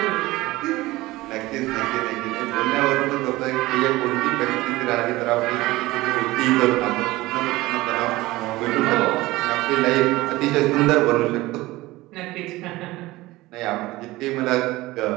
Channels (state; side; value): quieter; left; 19.1 dB